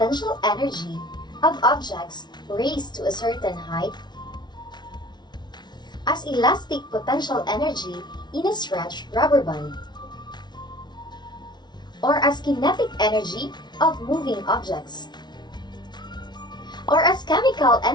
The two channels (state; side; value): late; right; 0.20 ms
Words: energy of objects raised to a certain height, as elastic potential energy in a stretched rubber band, or as kinetic energy of moving objects, or as chemical